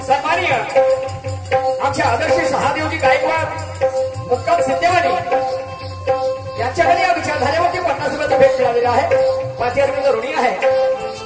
सन्माननीय आमच्या आदर्श शहादेवजी गायकवाड मुक्काम सिद्धेवाडी यांच्याकडे या विचारधारेवरती 50 रुपयाचा भेट मिळालेला आहे. 5000 रुपये ऋणी आहे.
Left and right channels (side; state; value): both; identical; correlation 1.00